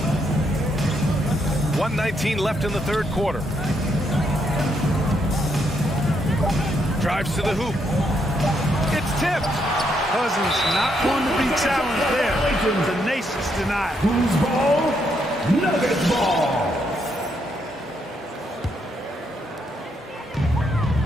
1:19 left in the third quarter. Drives to the hoop. It's tipped. Cousins not going to be challenged there. Tenacious denied. Who's ball? Nuggets ball.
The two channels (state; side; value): normal; both; correlation 0.76